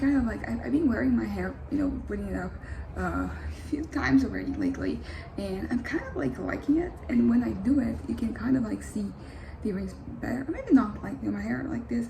of like I've been wearing my hair, putting it up a few times already lately, and I'm kind of like liking it. And when I do it, you can kind of like see the earrings better. Or maybe not like my hair like this,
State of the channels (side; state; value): both; identical; correlation 1.00